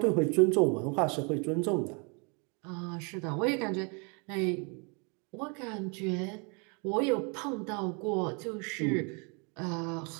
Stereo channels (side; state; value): left; quieter; 33.9 dB